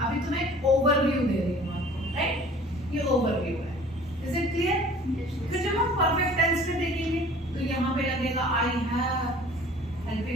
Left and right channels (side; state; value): both; normal; correlation 0.48